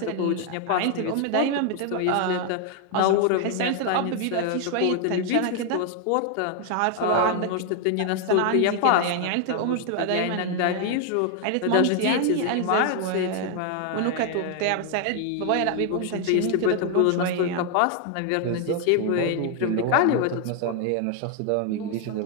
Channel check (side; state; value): both; different; correlation 0.00